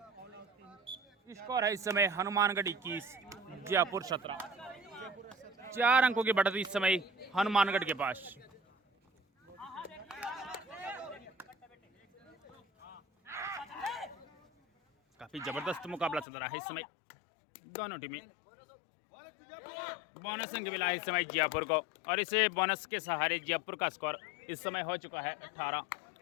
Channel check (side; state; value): right; drops out; at 16.2 s